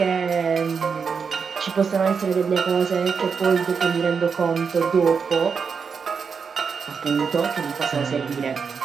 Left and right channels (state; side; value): quieter; left; 5.9 dB